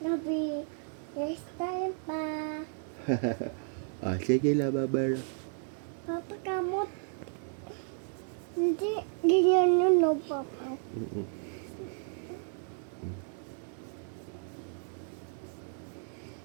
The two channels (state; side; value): silent; left; 56 dB below the other